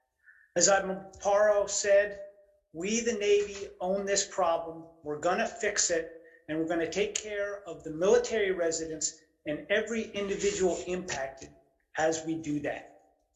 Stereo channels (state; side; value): identical; both; correlation 1.00